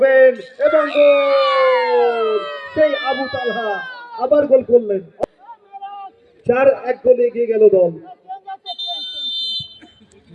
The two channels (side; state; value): both; identical; correlation 1.00